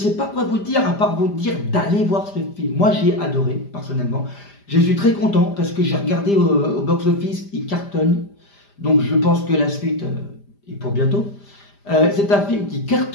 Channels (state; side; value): late; right; 5.0 ms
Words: pas quoi vous dire, à part vous dire d'aller voir ce film. Moi, j'ai adoré, personnellement. Je suis très content, parce que j'ai regardé au box-office, il cartonne. Donc, je pense que la suite est pour bientôt. C'est un film qui